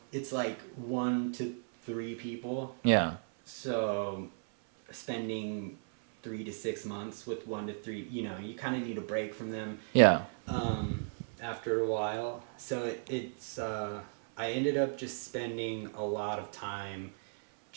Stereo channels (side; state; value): left; silent; 54 dB below the other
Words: it's like 1 to 3 people. Yeah. So spending 3 to 6 months with 1 to 3, you kind of need a break from them. Yeah. After a while, so it's I ended up just spending a lot of time